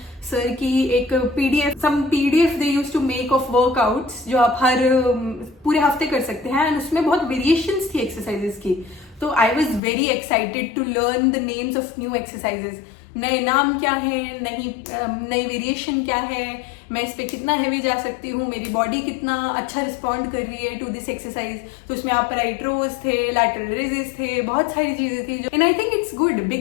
सर की एक PDF they use to make of workouts, जो आप हर पूरे हफ्ते कर सकते हैं। एंड उसमें बहुत वेरिएशंस थी एक्सरसाइजेस की। तो I was very excited to learn the names of new exercises, नए नाम क्या है, नई वेरिएशन क्या है, मैं इस पे कितना हैवी जा सकती हूँ, मेरी बॉडी कितना अच्छा रिस्पॉन्ड कर रही है टू दिस एक्सरसाइज। तो उसमें आप राइट रोज थे, लैटरल रेजेस थे, बहुत सारी चीजें थी। And I think it's good,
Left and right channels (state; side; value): drops out; right; at 9.8 s